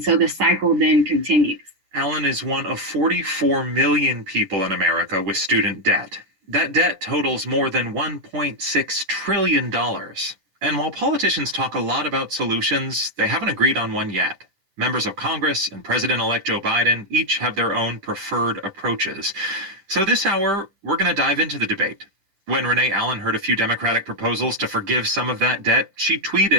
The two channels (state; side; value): late; left; 10 ms